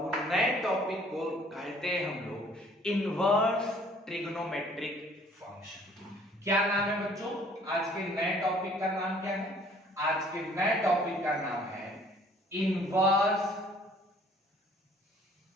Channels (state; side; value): normal; both; correlation 0.56